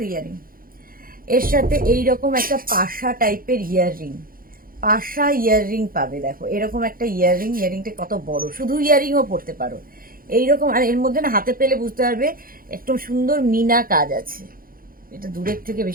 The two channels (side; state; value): left; late; 0.42 ms